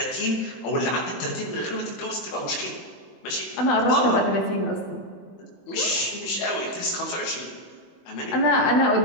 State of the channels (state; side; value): late; right; 21 ms